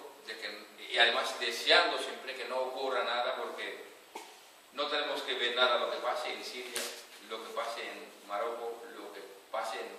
y además deseando siempre que no ocurra nada, porque no tenemos que ver nada lo que pase en Siria, lo que pase en Marruecos, lo que pase en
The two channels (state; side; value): identical; both; correlation 1.00